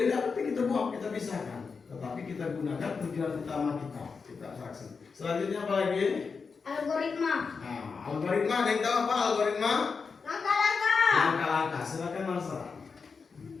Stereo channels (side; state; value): right; quieter; 5.1 dB